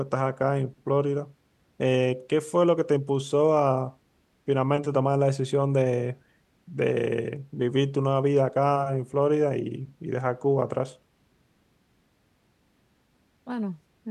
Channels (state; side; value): identical; both; correlation 1.00